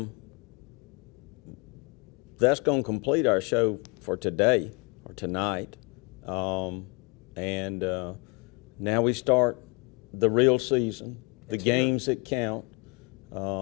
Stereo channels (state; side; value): quieter; right; 28.8 dB